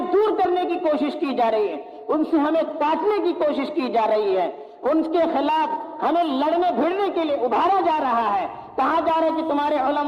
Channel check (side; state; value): both; identical; correlation 1.00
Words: دور کرنے کی کوشش کی جا رہی ہے، ان سے ہمیں کاٹنے کی کوشش کی جا رہی ہے، ان کے خلاف ہمیں لڑنے بھیڑنے کے لیے ابھارا جا رہا ہے، کہا جا رہا ہے کہ تمہارے